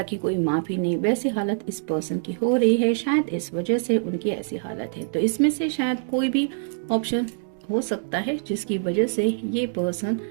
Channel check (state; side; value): silent; left; digital silence